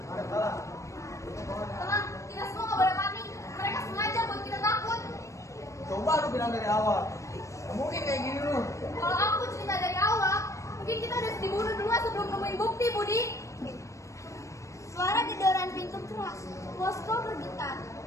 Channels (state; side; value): late; right; 0.15 ms